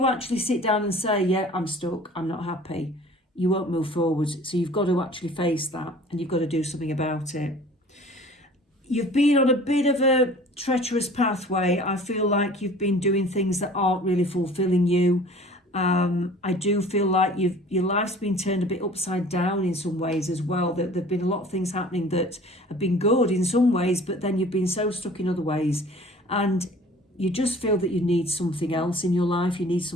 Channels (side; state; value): both; normal; correlation 0.47